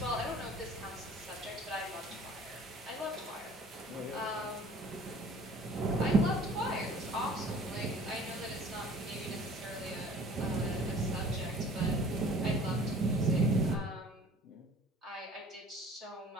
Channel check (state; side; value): normal; both; correlation 0.49